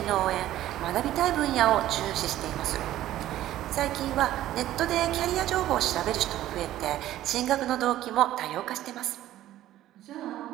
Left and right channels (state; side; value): quieter; left; 13.7 dB